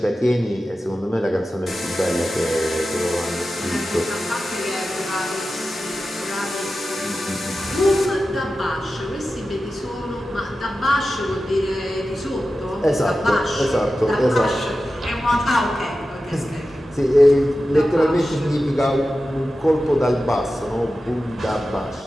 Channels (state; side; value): normal; both; correlation 0.93